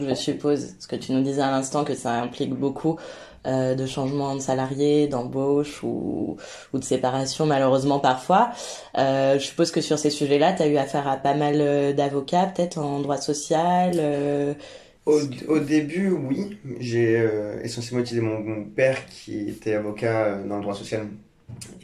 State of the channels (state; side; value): identical; both; correlation 1.00